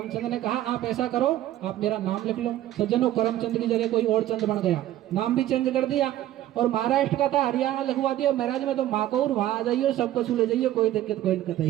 ने कहा आप ऐसा करो, आप मेरा नाम लिख लो। सज्जनों, करमचंद की जगह कोई और चंद बन गया, नाम भी चेंज कर दिया और महाराष्ट्र का था हरियाणा लिखवा दिया। महाराज में तो माकौर, वहां आ जाइए, सबको छू ले जाइए, कोई दिक्कत कोई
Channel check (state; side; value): quieter; left; 13.5 dB